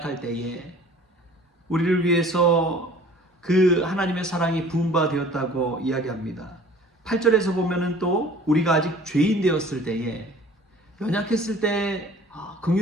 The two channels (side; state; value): both; normal; correlation 0.49